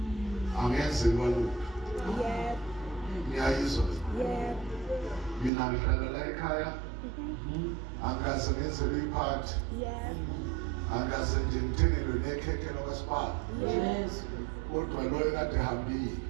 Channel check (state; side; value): drops out; left; at 5.5 s